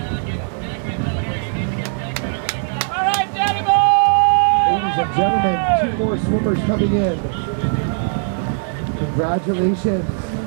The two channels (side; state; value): left; silent; 66 dB below the other